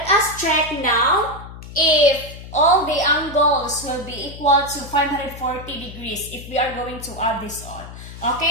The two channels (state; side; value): noise; left; hum, 14 dB below the sound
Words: us check now if all the angles will be equal to 540 degrees if we are going to add this all.